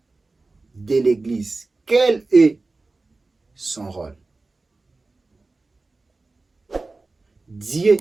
de l'Église. Quel est son rôle? Dieu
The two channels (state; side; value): quieter; left; 3.5 dB